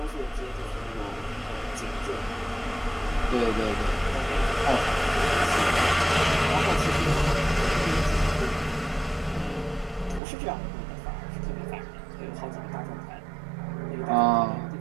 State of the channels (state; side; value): drops out; left; at 10.2 s